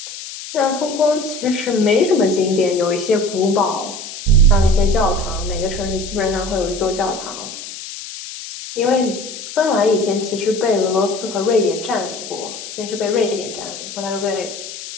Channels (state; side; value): noise; left; hiss, 11 dB below the sound